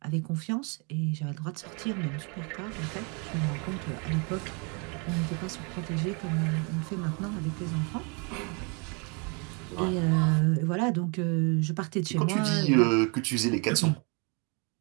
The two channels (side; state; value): left; quieter; 33.7 dB